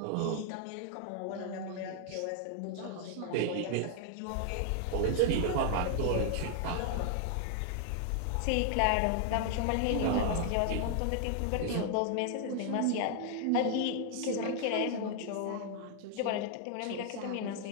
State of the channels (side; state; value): both; different; correlation 0.00